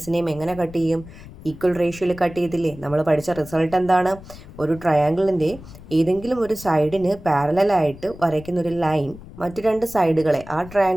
എങ്ങനെ കട്ട് ചെയ്യും? ഈക്വൽ റേഷ്യോയിൽ കട്ട് ചെയ്തില്ലേ? നമ്മൾ പഠിച്ച റിസൾട്ട് എന്താണ്? ഒരു ട്രയാങ്കിളിൻ്റെ ഏതെങ്കിലും ഒരു സൈഡിന് പാരലായിട്ട് വരയ്ക്കുന്ന ഒരു ലൈൻ മറ്റു രണ്ട് സൈഡുകളെ, ആ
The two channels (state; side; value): noise; left; rumble, 17 dB below the sound